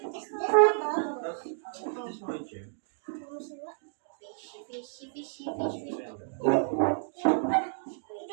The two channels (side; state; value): left; silent; digital silence